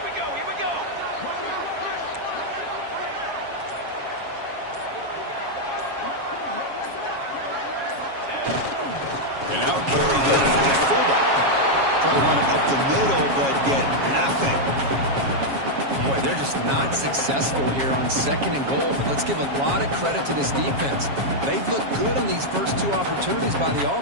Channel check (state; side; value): late; left; 7.3 ms